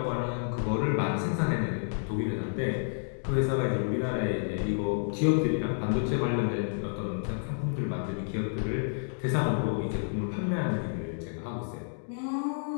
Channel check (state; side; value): silent; right; digital silence